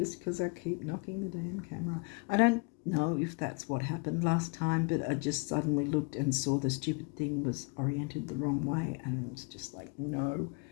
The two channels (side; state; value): right; quieter; 31.8 dB